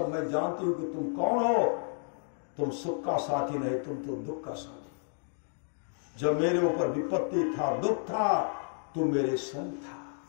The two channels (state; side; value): silent; right; 57 dB below the other